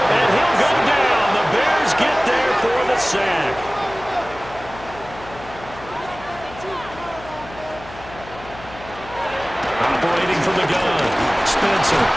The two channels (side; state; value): left; noise; hum, 17 dB below the sound